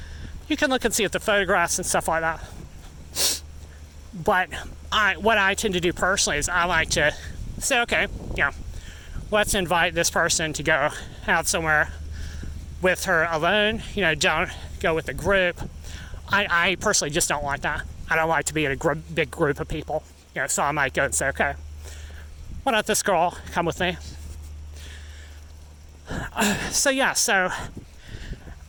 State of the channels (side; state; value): both; identical; correlation 1.00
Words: can look and see at the photographs and stuff like that. But what I tend to do personally is I like to say, okay, let's invite this person to go out somewhere with her alone. Don't go with a group. I personally just don't like that. I don't like to be in a big group of people. So I might go and say, okay, why don't this girl come with me? So